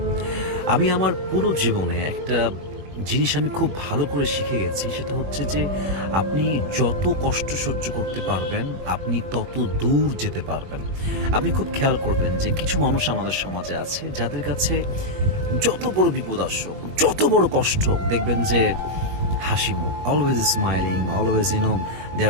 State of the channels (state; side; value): late; left; 21 ms